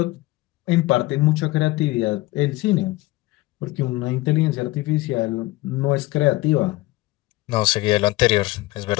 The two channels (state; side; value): quieter; right; 19.8 dB